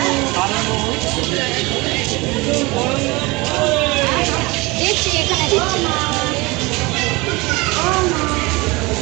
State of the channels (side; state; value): left; quieter; 23.9 dB